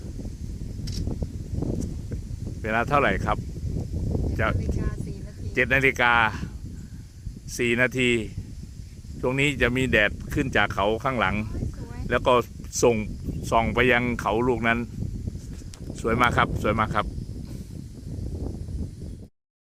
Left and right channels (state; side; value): identical; both; correlation 1.00